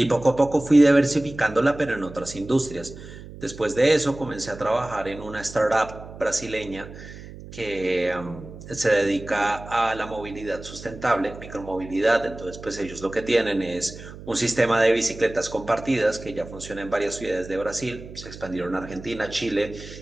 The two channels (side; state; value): right; noise; hum, 15 dB below the sound